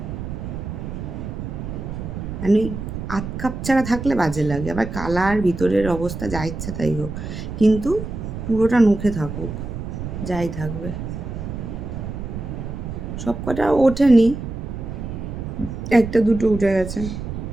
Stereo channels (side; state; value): right; noise; rumble, 7 dB below the sound